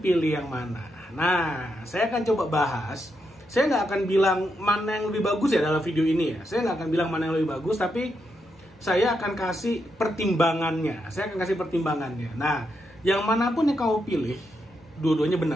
yang mana? Nah, saya akan coba bahas. Saya nggak akan bilang mana yang lebih bagus ya dalam video ini ya. Saya nggak akan bilang mana yang lebih bagus, tapi saya akan kasih pertimbangannya. Nah, yang manapun yang kamu pilih, dua-duanya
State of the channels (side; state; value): both; normal; correlation 0.82